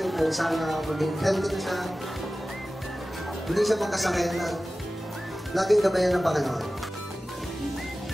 po, sana maging healthy na siya. Hindi siya magkasakit na laging gabayan ng Panginoon.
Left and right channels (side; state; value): both; normal; correlation 0.96